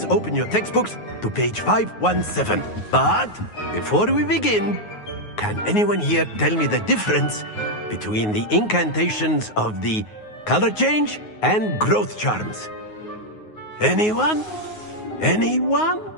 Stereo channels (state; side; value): late; right; 9.5 ms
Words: open your textbooks to page 517. But before we begin, can anyone here tell me the difference between the incantations of the color change and growth charms? Anyone? Anyone?